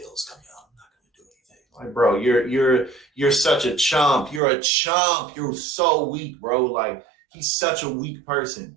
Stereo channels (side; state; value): left; drops out; at 4.4 s